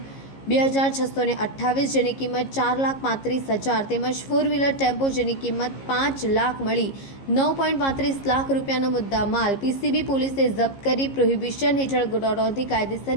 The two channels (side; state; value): right; late; 15 ms